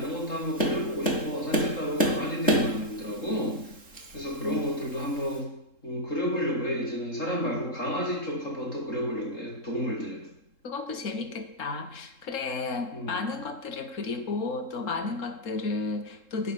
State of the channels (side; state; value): right; late; 3.7 ms